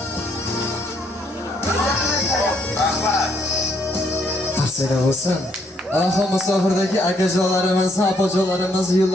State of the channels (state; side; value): normal; both; correlation 0.70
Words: Rahmat. Tavsiya bo'lsin. Alloh musofirdagi akajonlarimiz, opajonlarimiz